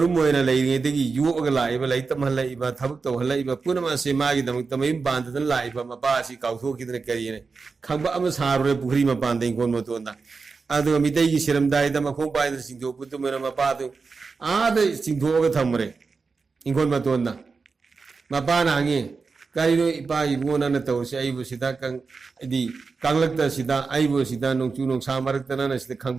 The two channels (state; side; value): quieter; left; 4.6 dB